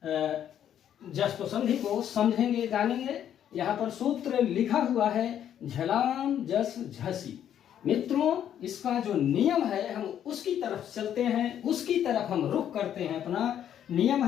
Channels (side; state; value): right; quieter; 10.0 dB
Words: जस्त संधि को समझेंगे, जानेंगे। यहाँ पर सूत्र लिखा हुआ है झलाम जस झसी। मित्रों, इसका जो नियम है हम उसकी तरफ चलते हैं, उसकी तरफ हम रुख करते हैं। अपना नियम